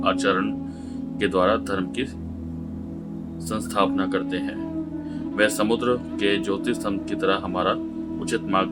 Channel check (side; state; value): both; identical; correlation 1.00